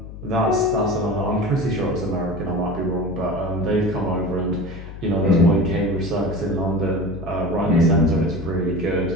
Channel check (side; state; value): left; noise; hum, 12 dB below the sound